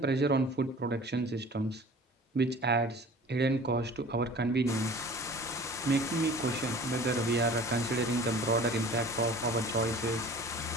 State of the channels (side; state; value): both; normal; correlation 0.44